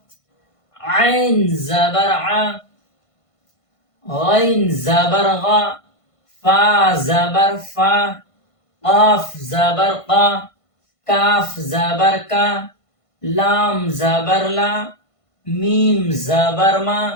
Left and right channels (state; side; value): late; right; 1.5 ms